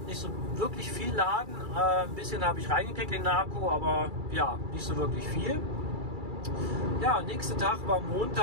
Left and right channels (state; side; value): late; left; 2.3 ms